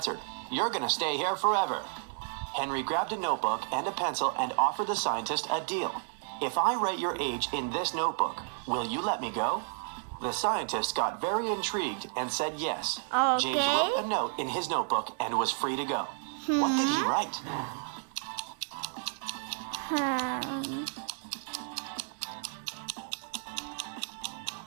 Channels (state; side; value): silent; left; 57 dB below the other